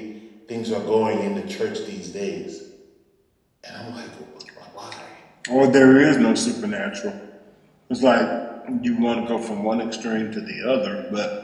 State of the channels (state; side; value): identical; both; correlation 1.00